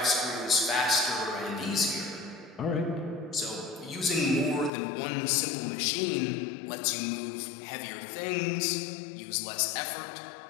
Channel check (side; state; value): right; drops out; at 4.7 s